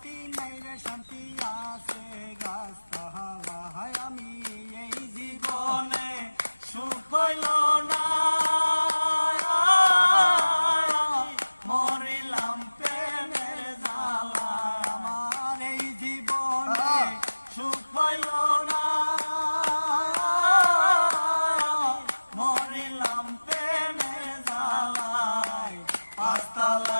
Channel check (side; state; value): both; inverted; correlation -1.00